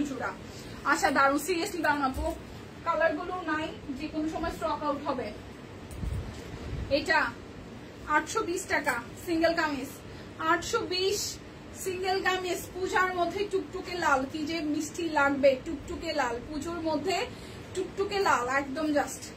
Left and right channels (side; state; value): both; identical; correlation 1.00